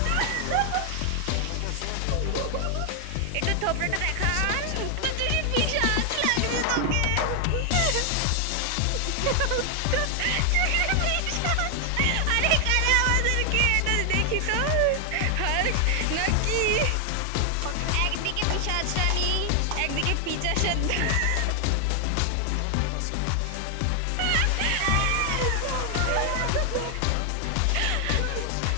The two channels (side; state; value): both; different; correlation 0.00